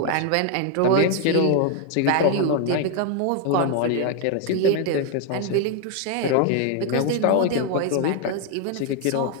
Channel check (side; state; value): both; different; correlation 0.00